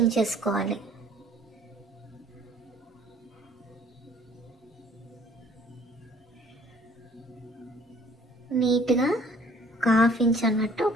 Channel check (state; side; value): normal; both; correlation 0.56